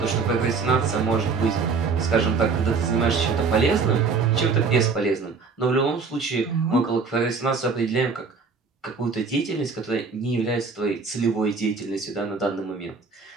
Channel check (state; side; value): quieter; left; 4.8 dB